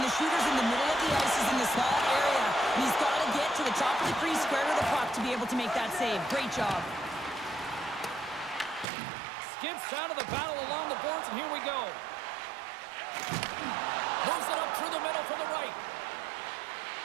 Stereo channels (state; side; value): drops out; left; at 8.8 s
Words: the shooter's in the middle of the ice, is in the small area, and he's got to get to the top of the crease square to the puck to be able to make that save. Great job. Skips out of the battle along the boards, and here we go. Moves it up through the middle from the right.